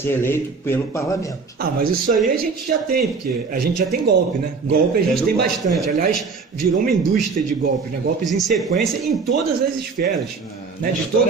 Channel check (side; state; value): left; quieter; 4.8 dB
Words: eleito pelo parlamento. Mas isso aí a gente já tem, porque a gente já tem golpe, né? Golpe a gente tem bastante. Aliás, virou uma indústria de golpes, né? Golpes em sequência em todas as esferas. Né? De